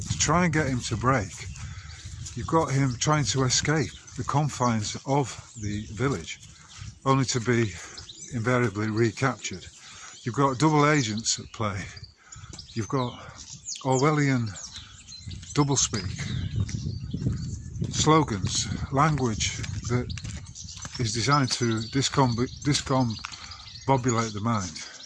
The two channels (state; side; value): identical; both; correlation 1.00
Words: try and get him to break. You've got him trying to escape the confines of the village, only to be invariably recaptured. You've got double agents at play. You've got Orwellian doublespeak, slogans, language that is designed to discombobulate the mind,